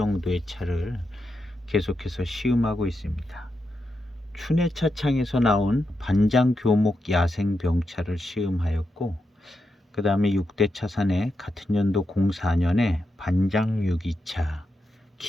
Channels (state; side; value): normal; both; correlation 0.86